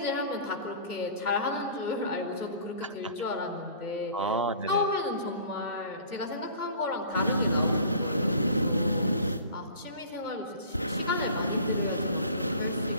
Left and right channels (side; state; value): both; inverted; correlation -0.46